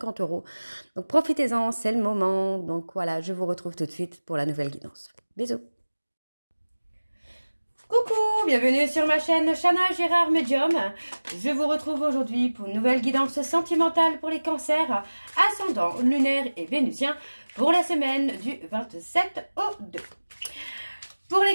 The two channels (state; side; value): inverted; both; correlation -1.00